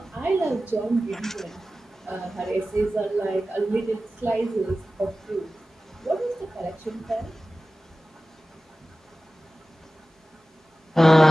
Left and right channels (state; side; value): normal; both; correlation 0.96